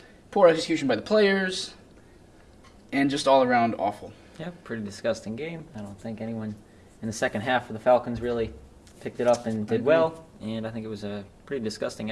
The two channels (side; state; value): both; identical; correlation 1.00